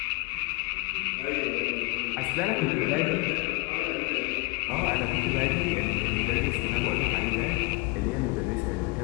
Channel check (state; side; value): quieter; right; 26.9 dB